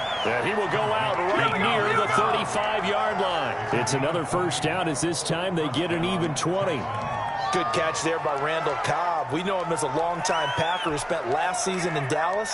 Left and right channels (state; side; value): identical; both; correlation 1.00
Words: And he will go out right near the 35-yard line. It's another first down as this time they get an even 20. Good catch there by Randall Cobb. We know him as a longtime Packer who spent last season in